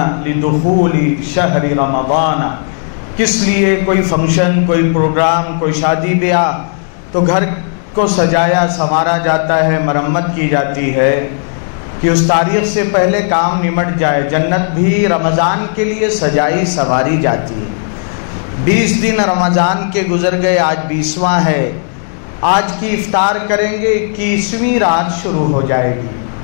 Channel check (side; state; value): right; silent; 68 dB below the other